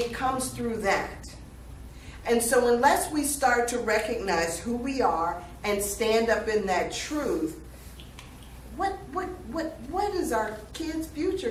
comes through that. And so unless we start to recognize who we are and stand up in that truth, what is our kids'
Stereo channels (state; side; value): identical; both; correlation 1.00